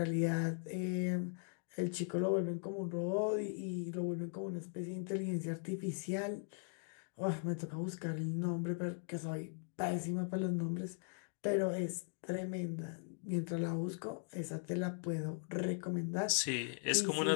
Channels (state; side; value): silent; right; 52 dB below the other